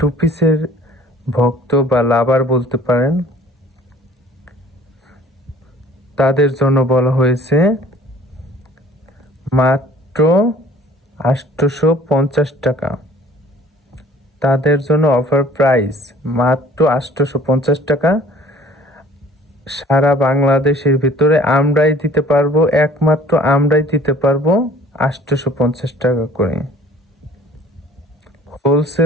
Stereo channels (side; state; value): both; normal; correlation 0.50